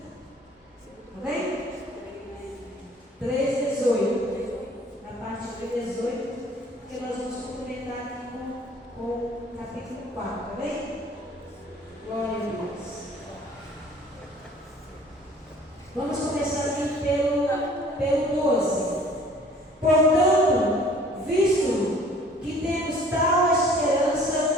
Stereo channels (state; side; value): normal; both; correlation 0.53